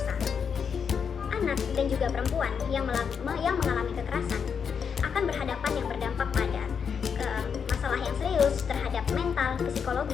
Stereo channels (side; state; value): right; quieter; 6.7 dB